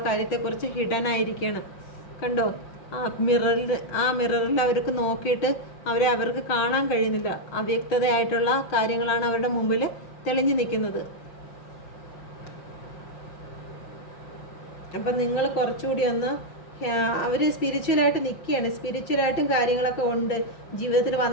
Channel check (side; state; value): right; late; 5.7 ms